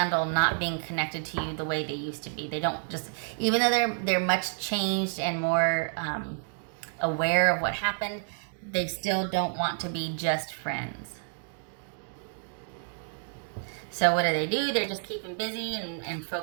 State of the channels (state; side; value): silent; left; 58 dB below the other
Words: not being connected to you the way they used to be. They don't just, even though they're much changed and more aware of what happened, they still don't want to be just friends. So what do? They're just keeping busy and